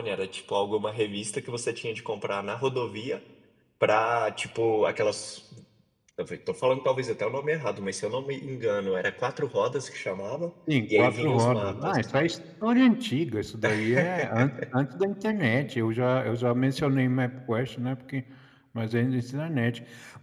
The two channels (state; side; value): identical; both; correlation 1.00